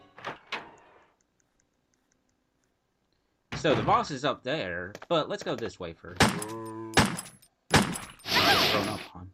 So the boss is up there, but let's go this way first. Get thrown up on.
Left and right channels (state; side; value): identical; both; correlation 1.00